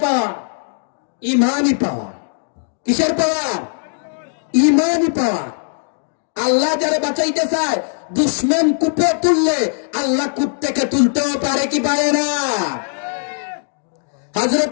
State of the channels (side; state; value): right; silent; digital silence